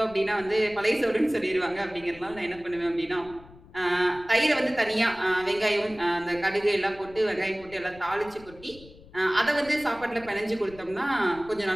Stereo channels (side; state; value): left; noise; rumble, 21 dB below the sound